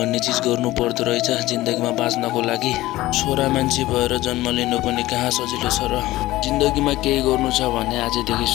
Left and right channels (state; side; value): quieter; right; 17.2 dB